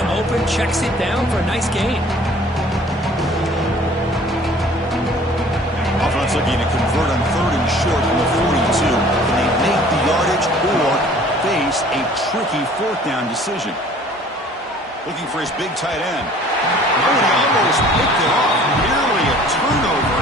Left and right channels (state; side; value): normal; both; correlation 0.51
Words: open, checks it down for a nice gain. Offense looking to convert on 3rd and short from the 42. Can they make the yardage or face a tricky 4th down decision? Looking for his big tight end. Oh, he almost picked it off. Nearly a turnover